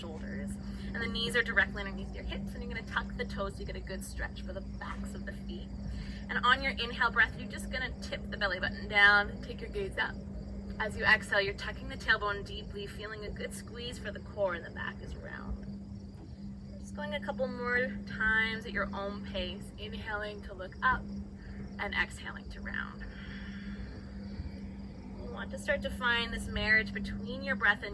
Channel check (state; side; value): identical; both; correlation 1.00